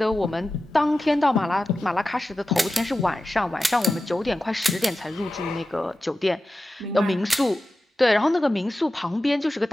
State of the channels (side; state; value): both; normal; correlation 0.93